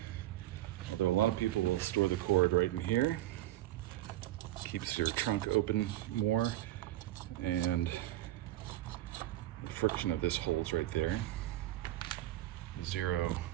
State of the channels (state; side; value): quieter; left; 14.7 dB